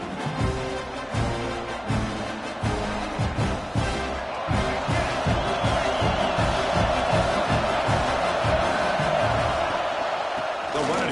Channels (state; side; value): identical; both; correlation 1.00